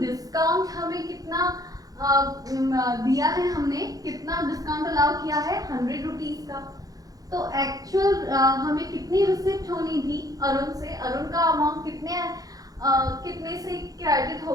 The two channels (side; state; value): left; late; 0.18 ms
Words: हमें कितना दिया है, हमने कितना डिस्काउंट अलाउ किया है? 100 रुपीज का। तो एक्चुअल हमें कितनी रिसिप्ट होनी थी अरुण से? अरुण का अमाउंट कितने से क्रेडिट